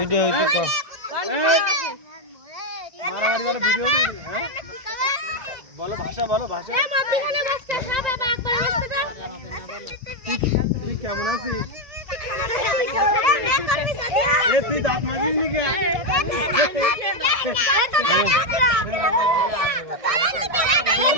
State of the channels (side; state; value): left; late; 1.6 ms